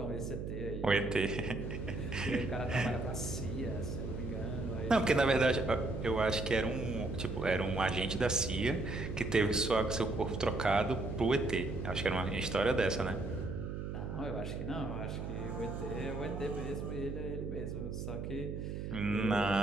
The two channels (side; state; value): right; noise; hum, 5 dB below the sound